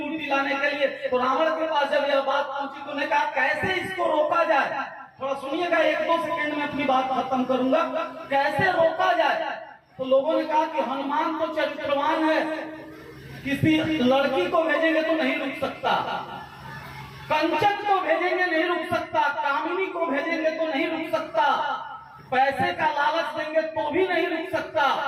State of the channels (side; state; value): both; identical; correlation 1.00